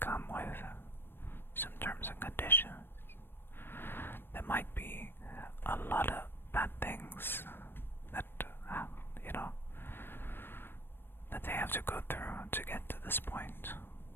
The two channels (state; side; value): late; right; 0.10 ms